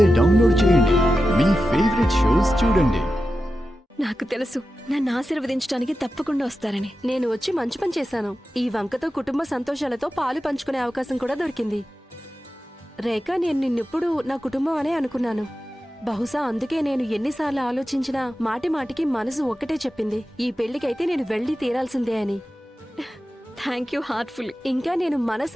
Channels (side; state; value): both; normal; correlation 0.92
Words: డౌన్లోడ్ చేయండి. మీ ఫేవరెట్ షోస్ చూడండి. నాకు తెలుసు నన్ను ఆశీర్వదించడానికి తప్పకుండా వస్తారని. నేను వచ్చి మంచి పని చేశాను. ఈ వంకతో కుటుంబ సంతోషాలతో పాలు పంచుకునే అవకాశం కూడా దొరికింది. రేఖ, నేను నిన్నెప్పుడు నా కుటుంబం అనే అనుకున్నాను. బహుశా అందుకే నేను ఎన్నిసార్లు ఆలోచించినా మాటి మాటికి మనసు ఒక్కటే చెప్పింది, ఈ పెళ్లికైతే నేను వెళ్ళి తీరాల్సిందే అని. Thank you heartful. ఇంకా నేను